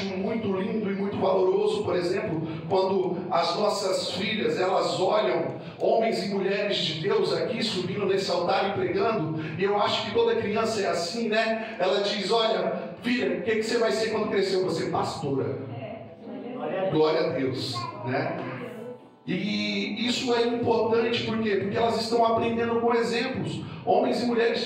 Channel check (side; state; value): both; identical; correlation 1.00